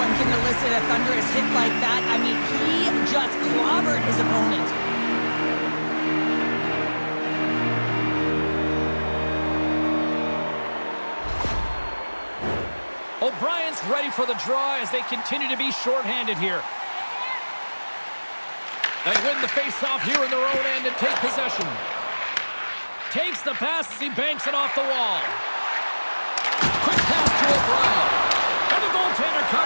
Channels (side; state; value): both; inverted; correlation -1.00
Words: can elicit a thunderous hit like that. I mean, he just clobbered his opponent. O'Brien's ready for the draw as they continue to be shorthanded here. They win the face-off here in their own end and take possession. Takes the pass as he banks it off the wall. Quick pass to O'Brien. And the goaltender